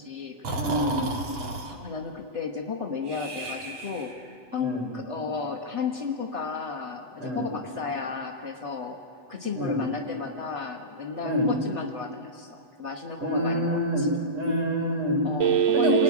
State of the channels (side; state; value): left; late; 8.1 ms